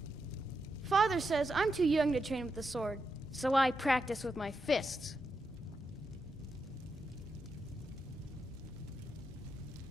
Father says I'm too young to train with the sword, so I practice with my fists.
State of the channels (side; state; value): both; normal; correlation 0.85